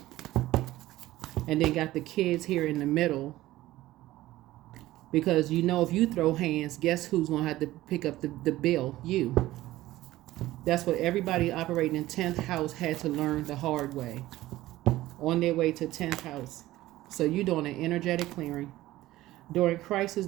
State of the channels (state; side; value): quieter; left; 16.2 dB